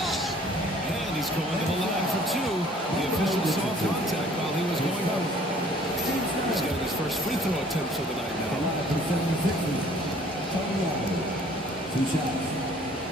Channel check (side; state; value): both; normal; correlation 0.55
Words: He's getting his first free throw attempt for the night The now. lineup for the 76ers. Tony Allen. 2 shots.